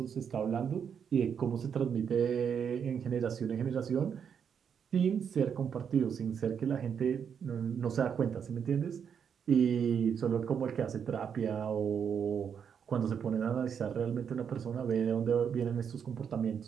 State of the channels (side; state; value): left; quieter; 7.4 dB